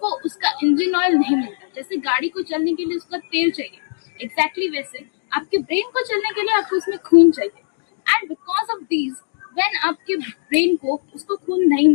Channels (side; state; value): right; silent; digital silence